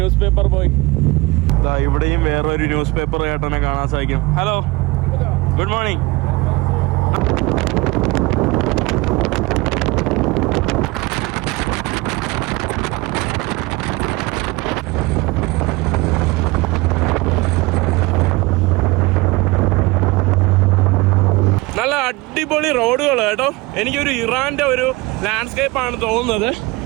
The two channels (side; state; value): left; quieter; 23.1 dB